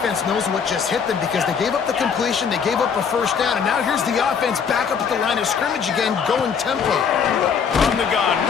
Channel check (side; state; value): right; quieter; 6.6 dB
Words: knows what just hit them because they gave up the completion, they gave up a first down, and now here's the offense back up at the line of scrimmage again, going tempo. From the gun,